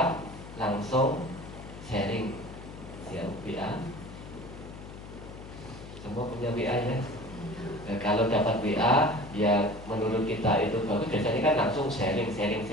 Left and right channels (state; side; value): noise; left; hum, 14 dB below the sound